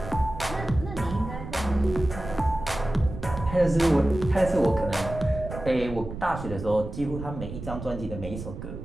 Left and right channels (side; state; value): right; noise; rumble, 10 dB below the sound